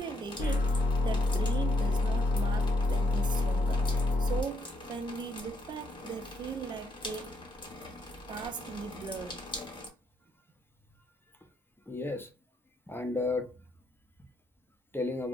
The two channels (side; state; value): both; normal; correlation 0.75